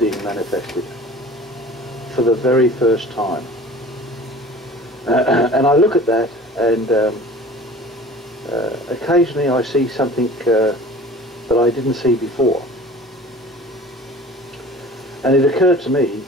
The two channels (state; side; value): normal; both; correlation 0.43